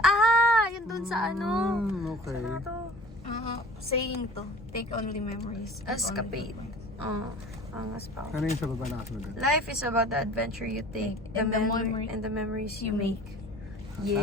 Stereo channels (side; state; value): both; normal; correlation 0.45